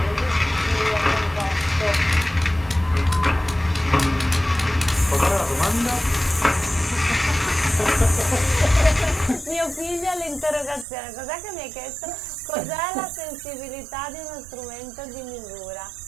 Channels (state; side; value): drops out; left; at 10.9 s